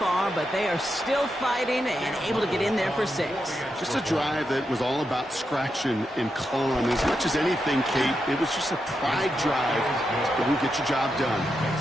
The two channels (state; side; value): normal; both; correlation 0.86